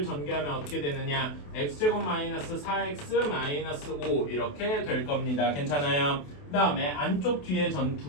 전개하면 어떻게 되느냐? x제곱 마이너스 4x 마이너스 5 이렇게 될 겁니다. 괜찮아요? 그 다음에 안쪽 뒤에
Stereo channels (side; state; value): right; late; 28 ms